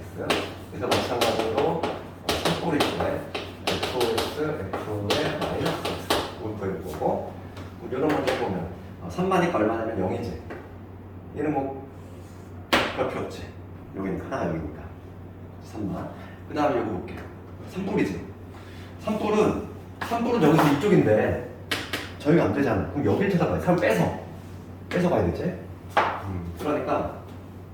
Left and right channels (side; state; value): both; identical; correlation 1.00